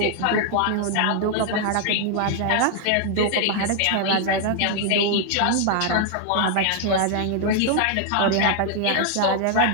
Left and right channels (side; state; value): both; different; correlation 0.00